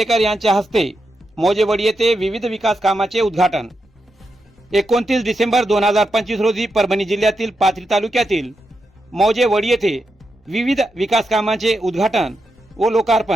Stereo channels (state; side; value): normal; both; correlation 0.86